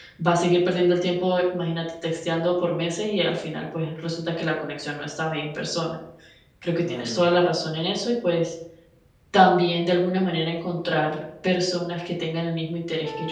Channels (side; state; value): both; identical; correlation 1.00